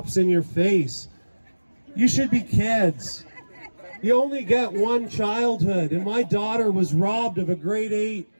in your face. You should be kids. You only get one childhood, and my daughter was robbed of a grade 8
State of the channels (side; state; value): both; inverted; correlation -1.00